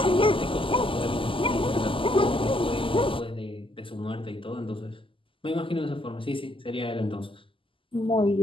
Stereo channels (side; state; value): right; late; 0.25 ms